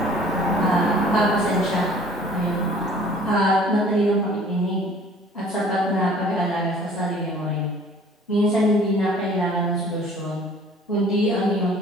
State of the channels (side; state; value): both; normal; correlation 0.51